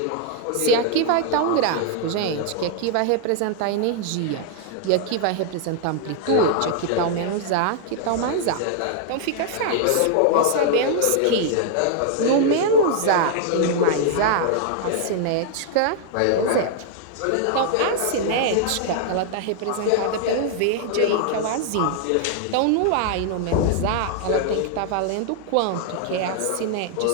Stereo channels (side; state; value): both; different; correlation 0.00